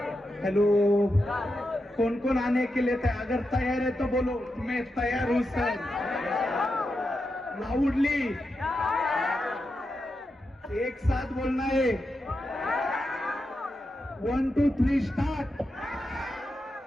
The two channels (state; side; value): normal; both; correlation 0.87